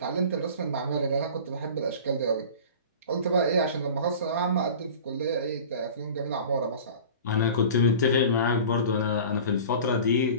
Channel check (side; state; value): both; inverted; correlation -0.39